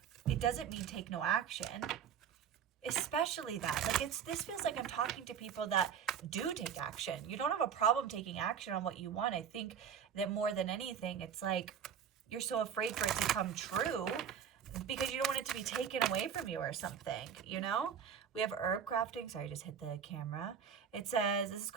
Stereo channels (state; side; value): quieter; left; 7.8 dB